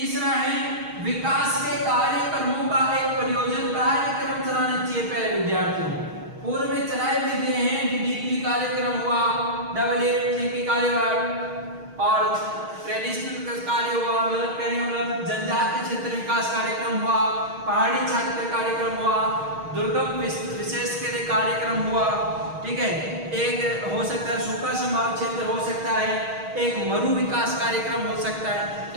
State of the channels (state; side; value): late; left; 6.4 ms